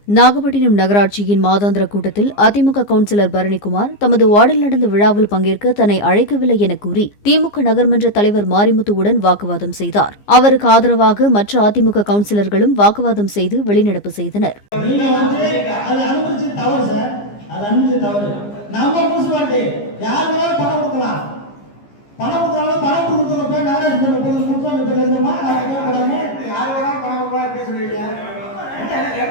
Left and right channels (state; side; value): late; right; 15 ms